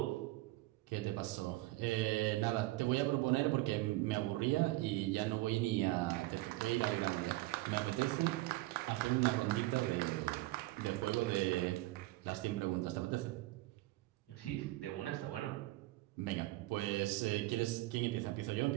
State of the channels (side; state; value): left; quieter; 19.2 dB